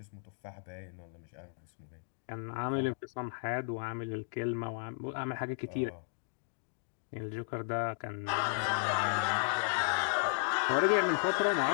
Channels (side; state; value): right; silent; digital silence